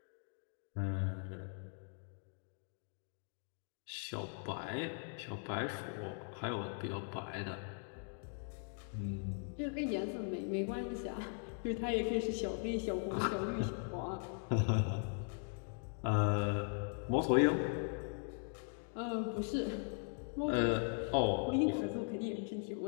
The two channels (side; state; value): right; silent; 51 dB below the other